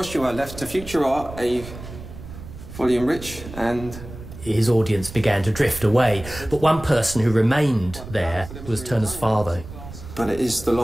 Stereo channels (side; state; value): right; noise; rumble, 13 dB below the sound